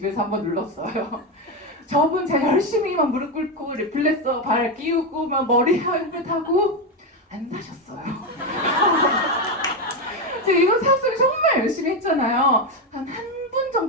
한번 눌렀어요. 저분 제가 열심히 막 무릎 꿇고 리플렉서 발 끼우고 막 머리 헬멧 하고 안 사셨어요. 제가 이거 사업을 정말 열심히 했잖아요. 한 분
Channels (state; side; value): normal; both; correlation 0.10